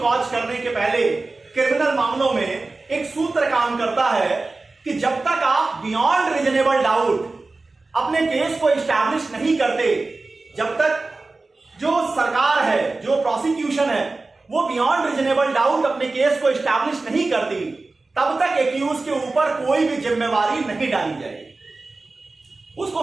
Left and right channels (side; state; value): left; quieter; 3.5 dB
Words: करने के पहले क्रिमिनल मामलों में एक सूत्र काम करता है कि जब तक आप बियॉन्ड रीजनेबल डाउट अपने केस को इस्टैब्लिश नहीं करते, जब तक जो सरकार है, जो प्रोसिक्यूशन है, वो बियॉन्ड रीजनेबल डाउट अपने केस को इस्टैब्लिश नहीं करती, तब तक एक्यूज के ऊपर कोई भी जिम्मेवारी नहीं डाली जाएगी, उसको